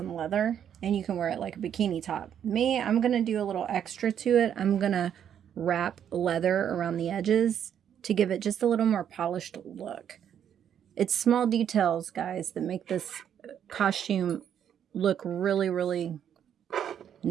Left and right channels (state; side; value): quieter; left; 9.1 dB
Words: leather, and you can wear it like a bikini top. Me, I'm going to do a little extra to it. I'm going to wrap leather around the edges to give it just a little more polished look. It's small details, guys, that make this costume look really, really